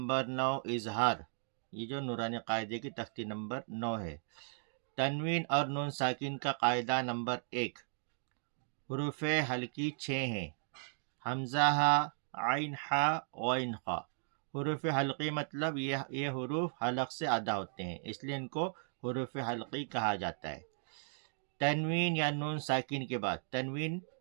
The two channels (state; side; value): silent; left; digital silence